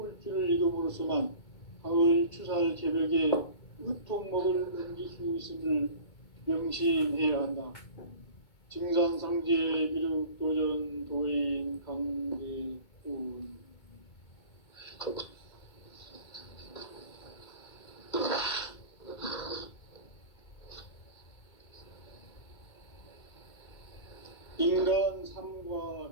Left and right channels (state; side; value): late; right; 2.2 ms